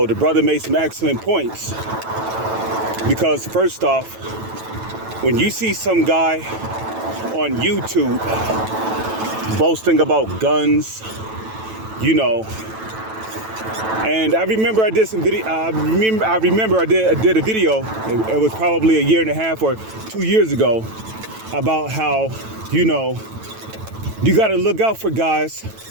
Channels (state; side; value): late; left; 9.1 ms